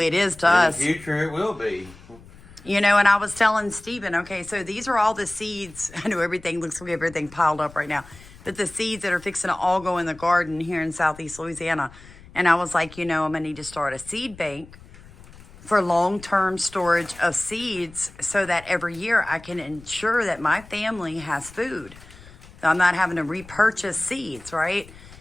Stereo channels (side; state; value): left; noise; rumble, 21 dB below the sound